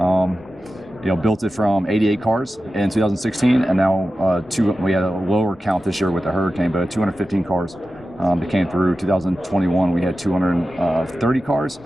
Built it from 88 cars in 2016, and now we had a lower count this year with the hurricane, but 215 cars that came through. 2021 we had 230 cars.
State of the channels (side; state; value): both; normal; correlation 0.93